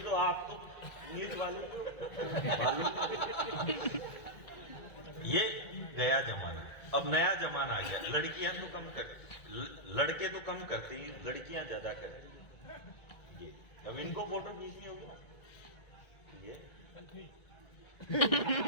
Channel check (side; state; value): right; late; 1.8 ms